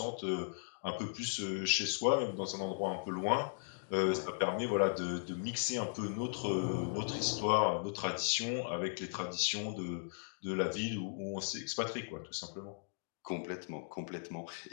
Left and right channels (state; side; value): silent; right; digital silence